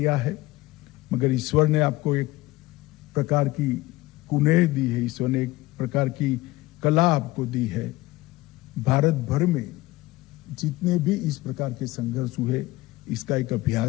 है, मगर ईश्वर ने आपको एक प्रकार की कुनेह दी है, ईश्वर ने एक प्रकार की कला आपको दी है। भारत भर में जितने भी इस प्रकार के संघर्ष हुए, इसका एक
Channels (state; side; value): quieter; right; 19.0 dB